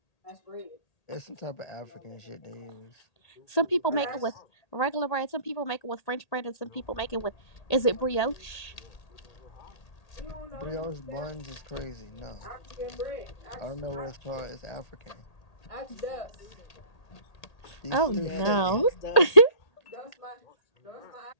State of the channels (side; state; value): right; late; 1.8 ms